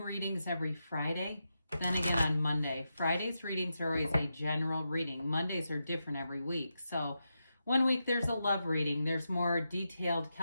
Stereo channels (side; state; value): both; inverted; correlation -0.87